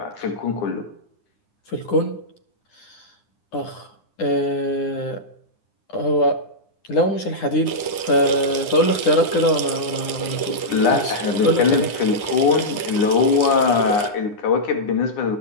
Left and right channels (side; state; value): right; late; 9.8 ms